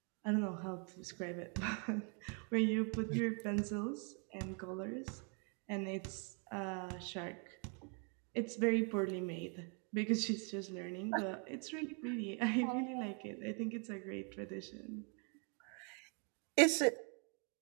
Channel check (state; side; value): quieter; left; 38.0 dB